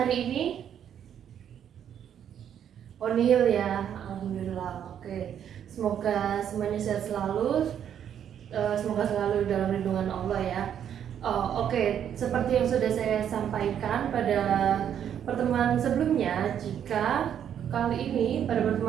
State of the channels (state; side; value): quieter; left; 9.2 dB